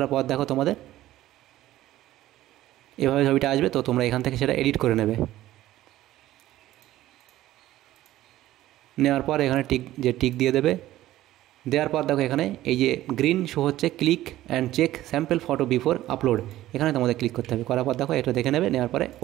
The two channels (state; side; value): quieter; left; 14.8 dB